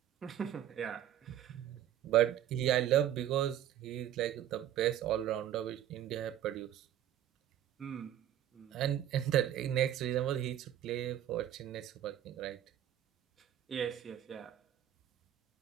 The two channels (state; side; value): quieter; left; 11.3 dB